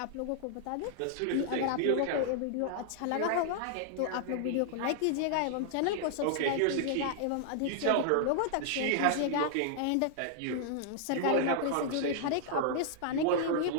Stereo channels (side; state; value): both; different; correlation -0.01